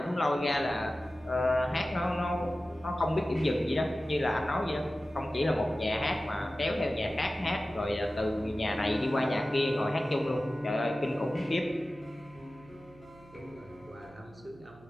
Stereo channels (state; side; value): noise; right; hum, 24 dB below the sound